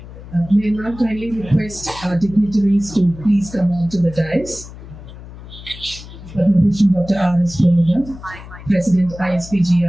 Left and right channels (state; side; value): noise; left; hum, 15 dB below the sound